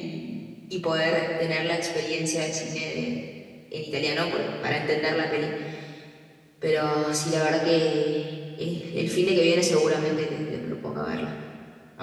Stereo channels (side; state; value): both; identical; correlation 1.00